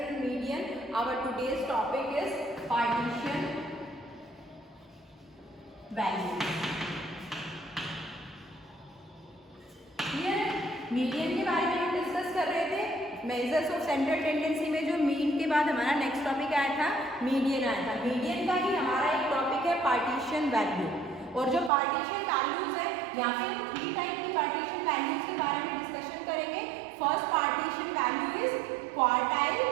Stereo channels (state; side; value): drops out; left; at 21.7 s